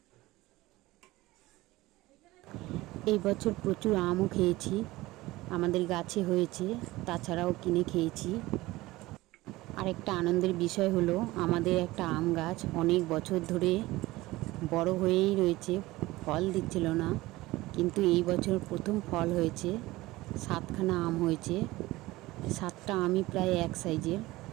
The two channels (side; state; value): left; quieter; 19.0 dB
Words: এই বছর প্রচুর আমও খেয়েছি, আমাদের গাছে হয়েছে, তাছাড়াও কিনে খেয়েছি। আরেকটা আনন্দের বিষয় হলো, আমাদের একটা আম গাছ অনেক বছর ধরে বড় হয়েই রয়েছে, ফল দিচ্ছিল না, কিন্তু এই বছর প্রথম ফল হয়েছে। 7খানা আম হয়েছে, 7টা আমই প্রায় এক সাইজের,